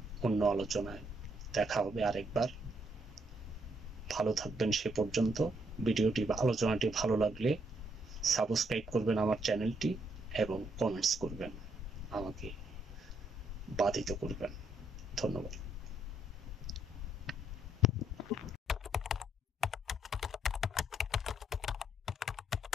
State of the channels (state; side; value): normal; both; correlation 0.74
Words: অন্য আলোচনায় দেখা হবে আরেকবার। ভালো থাকবেন সে পর্যন্ত। আলোচনাটি ভালো লাগলে সাবস্ক্রাইব করবেন আমার চ্যানেলটি এবং কমেন্টস করবেন, আমাকে বাধিত করবেন। ধন্যবাদ।